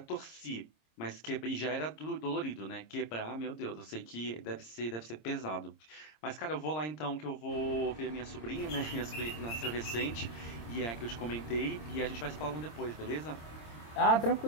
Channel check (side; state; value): right; late; 26 ms